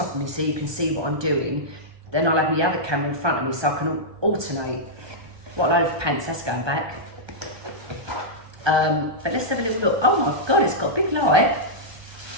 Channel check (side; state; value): left; late; 1.2 ms